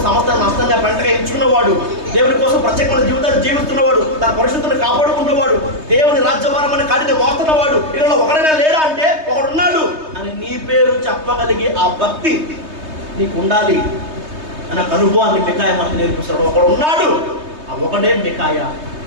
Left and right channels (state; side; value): late; left; 3.2 ms